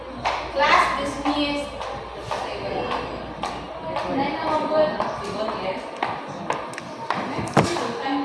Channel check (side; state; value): both; identical; correlation 1.00